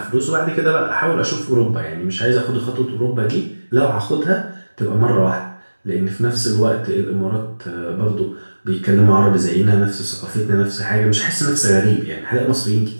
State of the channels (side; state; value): both; inverted; correlation -1.00